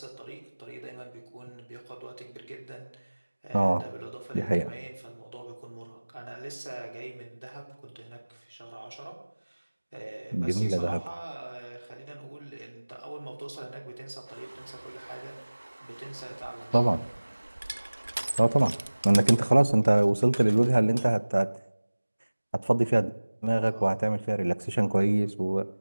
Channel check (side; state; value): both; inverted; correlation -1.00